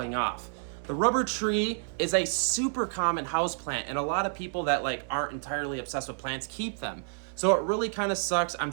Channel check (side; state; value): left; silent; 58 dB below the other